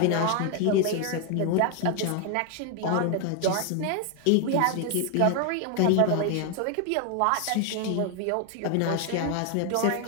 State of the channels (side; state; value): both; different; correlation 0.01